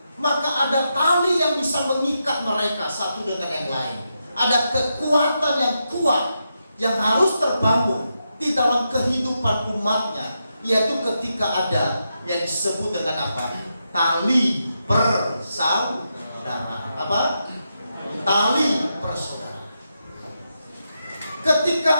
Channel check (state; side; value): inverted; both; correlation -0.85